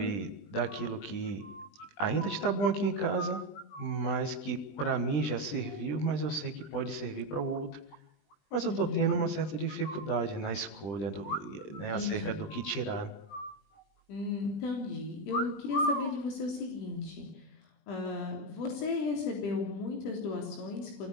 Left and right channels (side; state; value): right; late; 20 ms